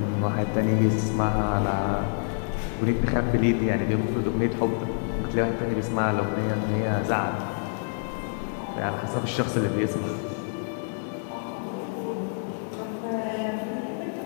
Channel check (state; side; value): silent; right; 60 dB below the other